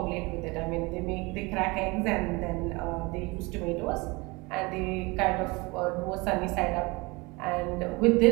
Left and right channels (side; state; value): left; quieter; 25.2 dB